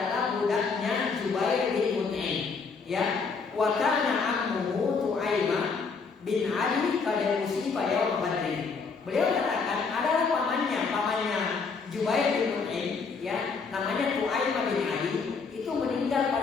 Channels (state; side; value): quieter; right; 4.9 dB